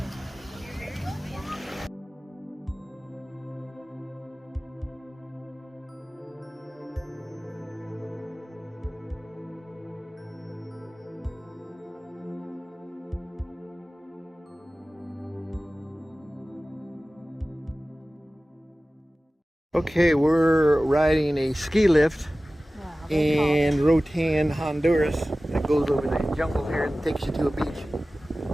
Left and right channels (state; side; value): normal; both; correlation 0.97